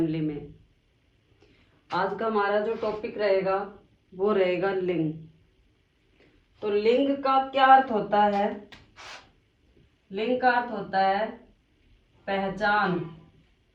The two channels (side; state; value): both; identical; correlation 1.00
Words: में। आज का हमारा जो टॉपिक रहेगा वो रहेगा लिंग। तो लिंग का क्या अर्थ होता है? लिंग का अर्थ होता है पहचान